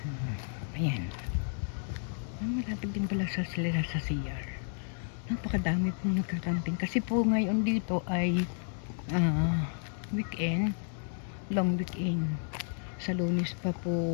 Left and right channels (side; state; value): right; silent; digital silence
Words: ayan. Malapit din pala sa sila sa CR. Napakadami pong nagka-camping kasi po ngayon dito ay weekend, long weekend. Sa Lunes pa